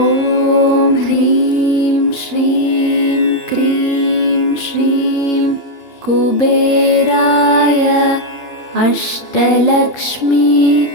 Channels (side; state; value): right; late; 2.9 ms